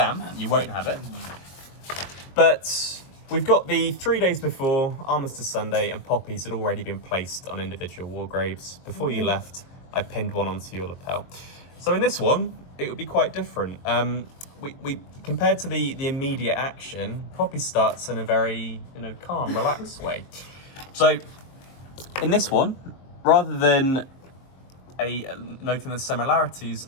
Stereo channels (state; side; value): late; right; 22 ms